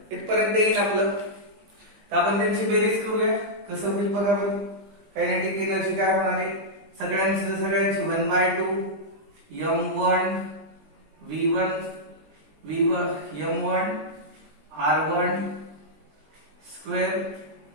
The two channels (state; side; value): late; left; 20 ms